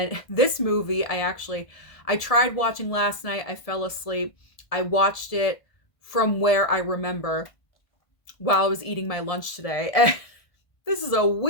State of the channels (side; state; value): right; late; 1.7 ms